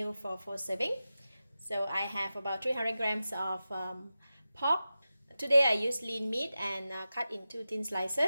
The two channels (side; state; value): both; inverted; correlation -0.94